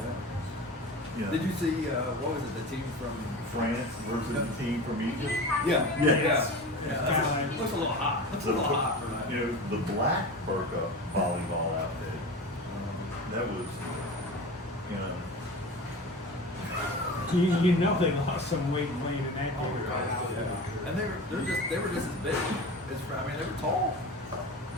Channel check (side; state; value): both; normal; correlation 0.32